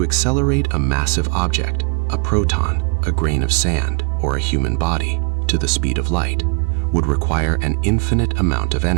accelerate a massive object, a proton, a grain of sand, or a human body, to the speed of light, would require an infinite amount of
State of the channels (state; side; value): quieter; left; 36.3 dB